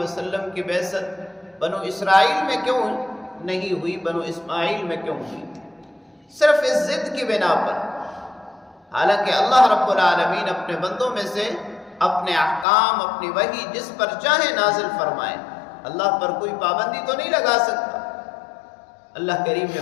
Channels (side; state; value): right; drops out; at 12.7 s